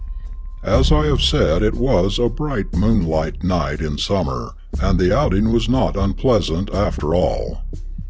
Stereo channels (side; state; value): both; identical; correlation 1.00